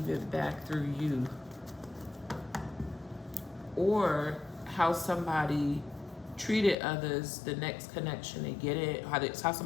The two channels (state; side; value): drops out; right; at 6.8 s